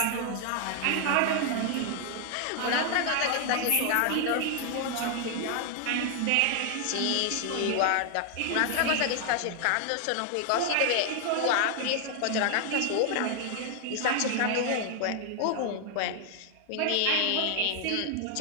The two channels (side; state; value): both; different; correlation 0.00